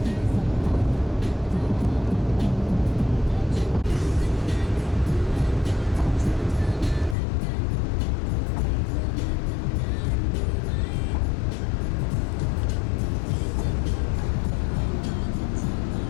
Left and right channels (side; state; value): right; drops out; at 7.2 s